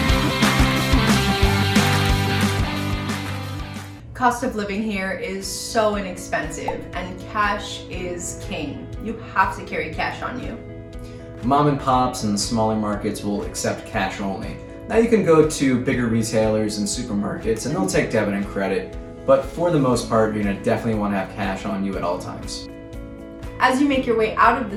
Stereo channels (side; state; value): both; identical; correlation 1.00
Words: Cost of living here is so inexpensive, and cash is king. You have to carry cash on you. Mom and pops and smaller markets will accept cash only. Now you can go to bigger retailers and supermarkets and they'll take debit and credit, but for the most part, you're gonna definitely want to have cash on you at all times. As you make your way out of the